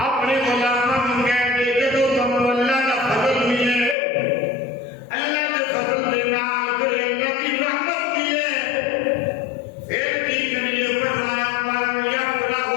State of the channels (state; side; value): drops out; right; at 4.0 s